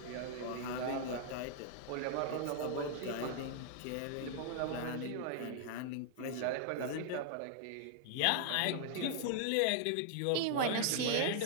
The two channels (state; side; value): different; both; correlation -0.01